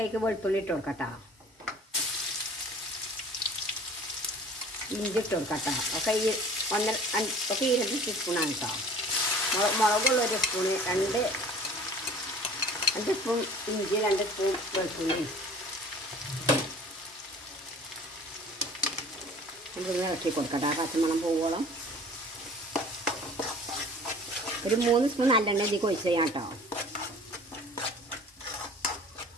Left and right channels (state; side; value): normal; both; correlation 0.47